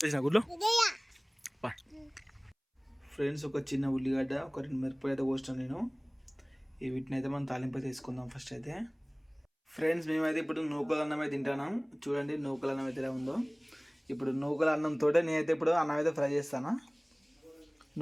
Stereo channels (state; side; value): identical; both; correlation 1.00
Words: చేసిన గుడ్లో ఫ్రెండ్స్ ఒక చిన్న ఉల్లిగడ్డ, ఒక 2 మిరపకాయలు అయితే కోస్తాను నేను. వీటిని అయితే మనం తాలింపు అయితే తీసుకుందాం ఫస్ట్ అయితే. ఫ్రెండ్స్ మేమైతే ఇప్పుడు నూకల అన్నం అయితే తింటున్నాం. చూడండి నూకల అన్నం అయితే ఎలా ఉందో. ఇప్పుడు నూకల అన్నంతో నేనైతే ఇప్పుడు అన్నం అయితే ఫ్రై చేస్తాను.